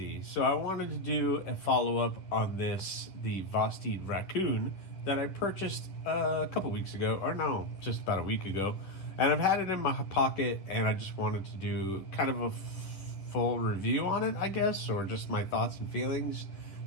So I wanted to do a follow-up on the Vosteed raccoon that I purchased a couple weeks ago, or no, just about a week ago. And I've had it in my pocket, and I just wanted to do kind of a full review on it, I guess, or just my thoughts and feelings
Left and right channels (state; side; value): late; right; 10 ms